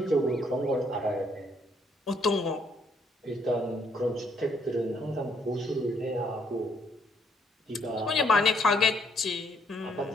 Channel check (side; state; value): both; normal; correlation 0.69